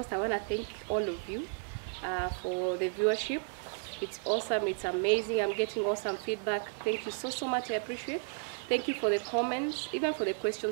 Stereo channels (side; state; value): left; silent; 56 dB below the other